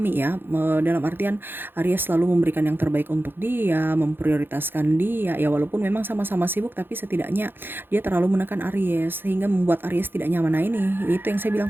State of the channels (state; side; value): late; left; 0.10 ms